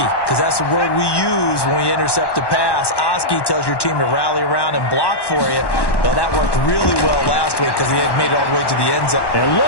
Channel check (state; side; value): late; right; 1.1 ms